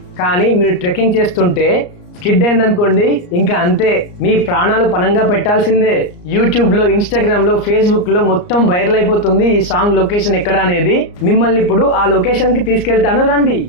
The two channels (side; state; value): right; late; 34 ms